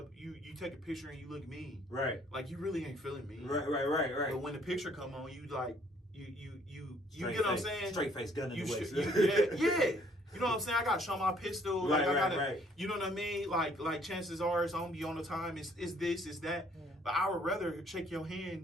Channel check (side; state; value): both; normal; correlation 0.62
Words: you take a picture and you look mean. Right. Like, you really ain't feeling me. Right. But when the picture come on, you like, you straight get what I'm face, saying? Straight face, gun in the waist. Yeah. You know what I'm saying? I got to show my pistol. Like, I gotta, right. You know what I mean? Like chances are it's on be on the time. It's this, it's that. Yeah. But I would rather shake your